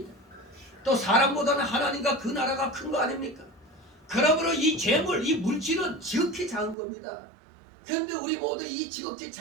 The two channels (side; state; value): left; drops out; at 6.8 s